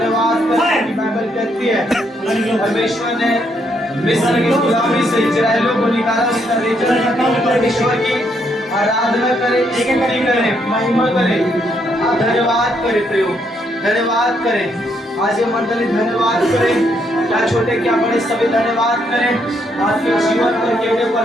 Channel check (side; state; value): both; normal; correlation 0.74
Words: करें। कि बाइबल कहती है परमेश्वर ने मिस्र की गुलामी से इजराइलियों को निकाला, उसका रिजल्ट परमेश्वर की आराधना करें, स्तुति करें, महिमा करें। आप धन्यवाद करें प्रयोग, धन्यवाद करें। आज ये मंडली धन्यवाद करें, क्या छोटे क्या बड़े सभी धन्यवाद करें। आपके जीवन पर केवल